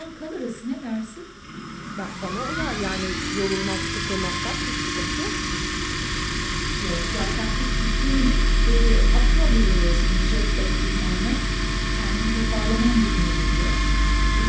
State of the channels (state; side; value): identical; both; correlation 1.00